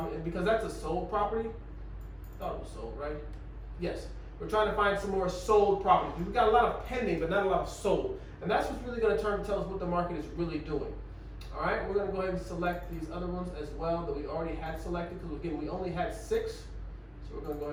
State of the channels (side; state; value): both; identical; correlation 1.00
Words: and because that's a sold property, I thought it was sold, right? Yes. We're trying to find some more sold properties. We've got a lot of pending, but not a lot of sold. And that's what's really going to tell us what the market is really doing. All right, we're going to go ahead and select these other ones as well that we already had selected, because again, we only had 6. So we're going to go